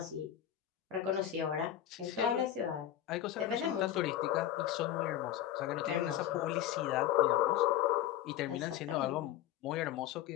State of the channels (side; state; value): right; quieter; 11.6 dB